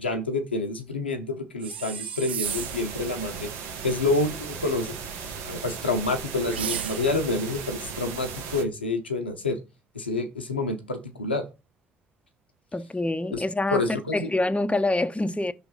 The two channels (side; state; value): both; normal; correlation 0.20